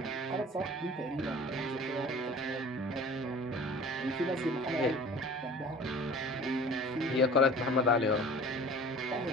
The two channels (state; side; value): normal; both; correlation 0.42